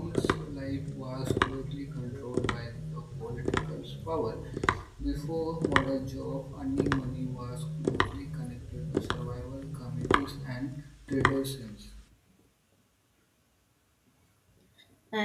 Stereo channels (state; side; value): identical; both; correlation 1.00